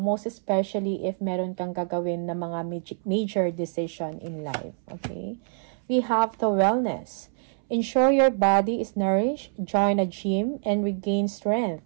Most especially if meron kang gagawin na mga major decision in life. Okay? We have the wellness. Ensure your body is nourished, join a gym, and regain strength.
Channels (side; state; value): left; silent; 61 dB below the other